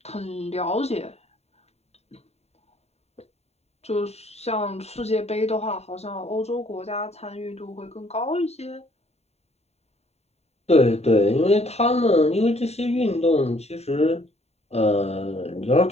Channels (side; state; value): right; late; 0.31 ms